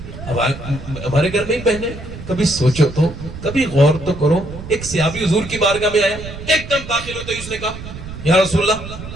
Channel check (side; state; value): right; noise; rumble, 12 dB below the sound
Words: ہمارے گھر میں ہی بہنیں, کبھی سوچو تو, کبھی غور تو کرو, ایک صحابی حضور کی بارگاہ میں آیا, ایک دم داخل ہوتے ہی اس نے کہا یا رسول اللہ